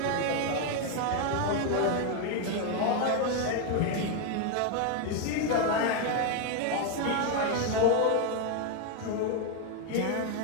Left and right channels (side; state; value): both; different; correlation 0.01